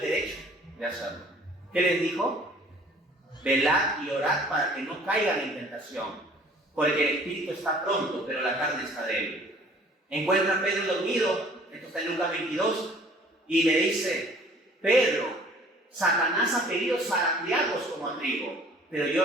de hacerlo. ¿Qué les dijo? Velad y orad para que no caigan en tentación, porque el espíritu está pronto, pero la carne está débil. Encuentra a Pedro dormido, esto está en Lucas 22, y le dice: Pedro, Satanás ha querido zarandearlos como a trigo, pero yo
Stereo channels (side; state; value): both; normal; correlation 0.53